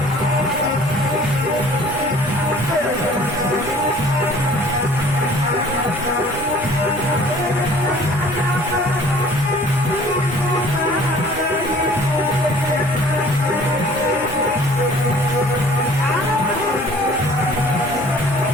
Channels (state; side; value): normal; both; correlation 0.51